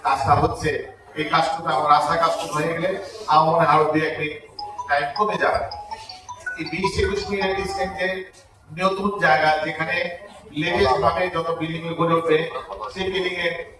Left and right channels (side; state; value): both; identical; correlation 1.00